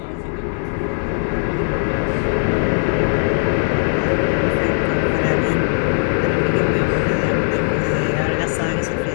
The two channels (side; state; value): right; silent; 63 dB below the other